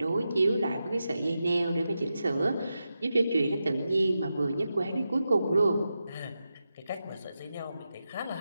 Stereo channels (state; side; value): inverted; both; correlation -0.90